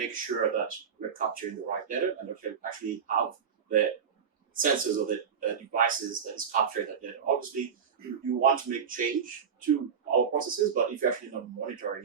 sure that we're capturing the right data and that we actually have the sensors or the devices that is capturing that data. Obviously, you want to make change to our processes, but if you're actually not monitoring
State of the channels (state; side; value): quieter; left; 7.0 dB